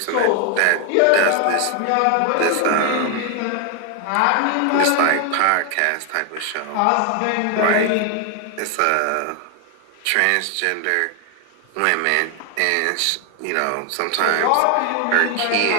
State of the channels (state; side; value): different; both; correlation 0.00